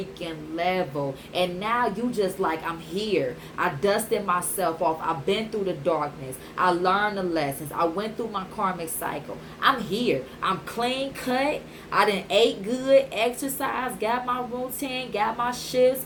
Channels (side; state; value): both; identical; correlation 1.00